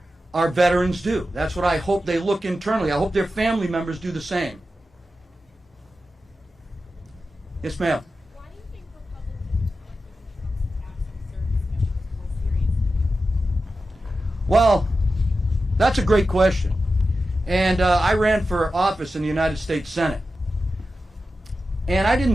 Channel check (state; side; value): normal; both; correlation 0.92